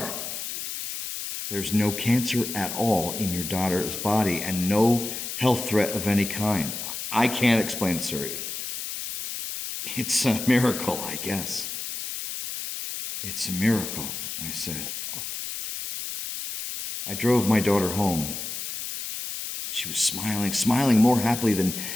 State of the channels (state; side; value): noise; left; hiss, 6 dB below the sound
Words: There's no cancer at all in your daughter's body and no health threat of any kind. I can't explain it, sir. It's a miracle, I guess. It's a miracle, I said. I drove my daughter home. She was smiling more happily than